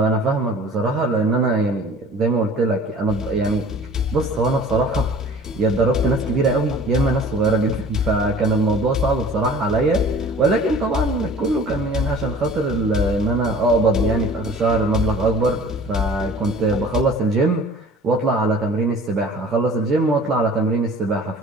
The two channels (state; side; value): normal; both; correlation 0.46